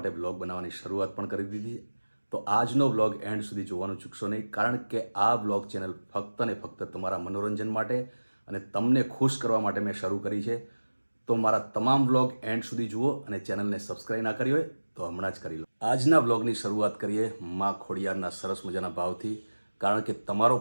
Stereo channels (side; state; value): both; inverted; correlation -1.00